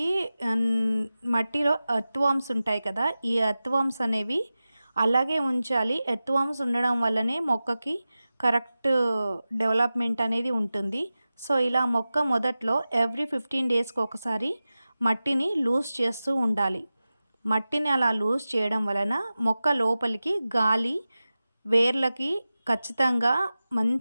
మట్టిలో ఎర్త్వార్మ్స్ ఉంటాయి కదా, ఈ ఎర్త్వార్మ్స్ అనేవి అలాగే ఉంచాలి. ఎర్త్వార్మ్స్ ఉండడం వల్లనే మొక్కకి కరెక్ట్ డెవలప్మెంట్ అనేది ఉంటుంది. సో ఇలా మొక్క మొదట్లో ఎవ్రీ 15 డేస్కి ఒకసారి మట్టిని లూజ్ చేస్తూ ఉండాలి. మట్టిని అలా లూజ్ చేయడం వలన మొక్క లోపలికి గాలి వేర్లకి ఖచ్చితంగా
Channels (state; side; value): inverted; both; correlation -0.95